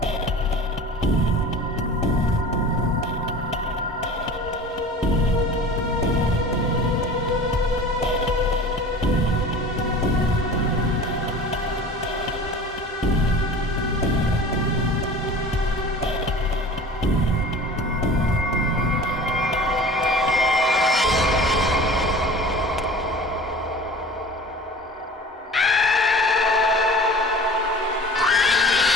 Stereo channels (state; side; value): normal; both; correlation 0.40